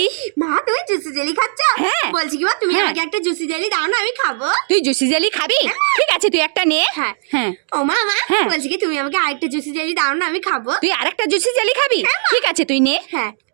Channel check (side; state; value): left; silent; digital silence